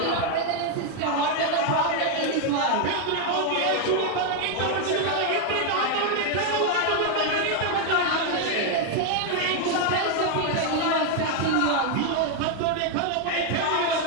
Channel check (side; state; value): both; different; correlation 0.01